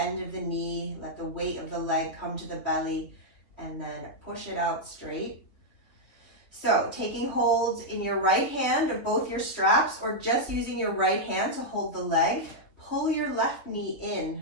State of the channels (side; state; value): right; late; 3.4 ms